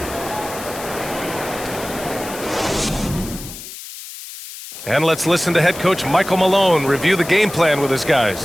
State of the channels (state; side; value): noise; left; hiss, 12 dB below the sound